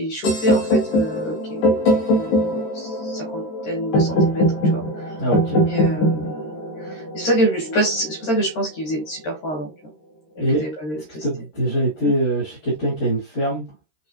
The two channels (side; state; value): right; late; 13 ms